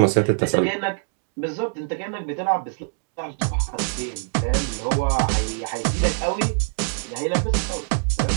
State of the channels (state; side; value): silent; left; digital silence